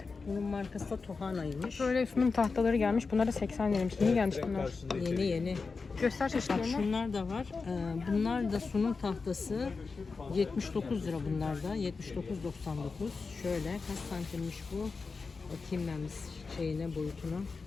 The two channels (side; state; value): right; quieter; 4.5 dB